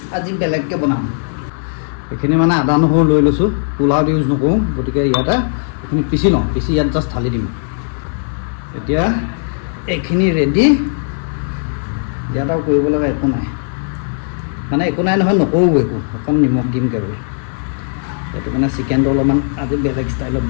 আজি বেলেগকৈ বনাম। এইখিনি মানে আদা নহৰু লৈ লৈছোঁ, পোলাওত ইউজ নকৰোঁ, গতিকে ইয়াতে এইখিনি পিচি লওঁ, পিচি ইয়াত জাষ্ট ঢালি দিম। এতিয়া এইখিনি ৰেডি। ইয়াত আৰু কৰিব লগা একো নাই, মানে একো নাই নহয়, নকৰোঁ একো, অকণ নিমখ দিম কেৱল। সেইটো মানে চিকেনটো অলপমান আজি বেলেগ ষ্টাইলত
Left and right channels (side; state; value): right; silent; 62 dB below the other